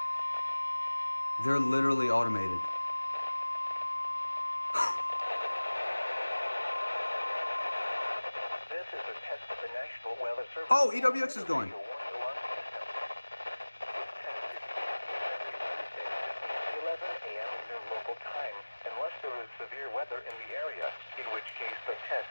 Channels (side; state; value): both; inverted; correlation -1.00